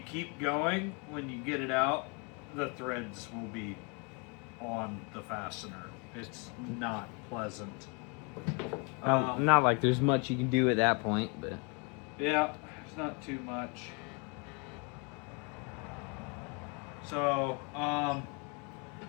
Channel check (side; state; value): right; quieter; 33.4 dB